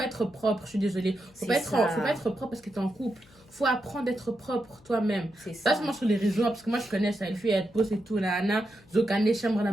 être propre. Je suis désolée. Faut C'est pas ça. faut pas être propre parce que t'es en couple. Faut apprendre d'être propre toi-même. C'est Pas ça. seulement sur les réseaux, parce que moi, je connais ça. Les filles, elles posent et tout, là, là. Zokane, chambre, là,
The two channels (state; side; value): noise; left; hum, 27 dB below the sound